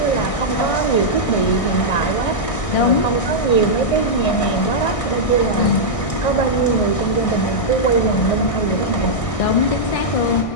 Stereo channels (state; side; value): late; right; 1.6 ms